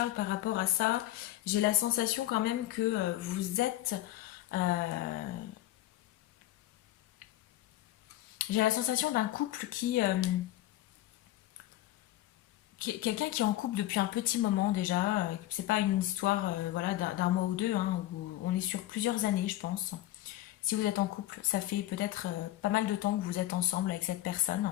par rapport à ça? J'ai la sensation quand même que vous êtes... euh, j'ai la sensation d'un couple quelqu'un qui est en couple depuis un petit moment déjà. C'est pas une histoire voilà, d'un mois ou deux, hein, où on est sur plusieurs années, je pense. Si vous êtes en couple, ça fait peut-être pas mal de temps que vous êtes ensemble avec cette personne.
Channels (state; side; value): quieter; right; 14.8 dB